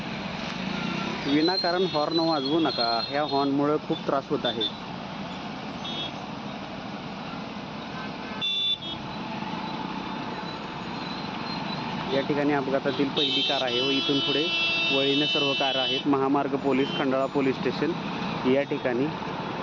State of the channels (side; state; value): both; identical; correlation 1.00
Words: विनाकारण हॉर्न वाजवू नका. ह्या हॉर्नमुळे खूप त्रास होत आहे. या ठिकाणी अपघातातील पहिली कार आहे व इथून पुढे वळीने सर्व कार आहेत. महामार्ग पोलीस खंडाळा पोलीस स्टेशन या ठिकाणी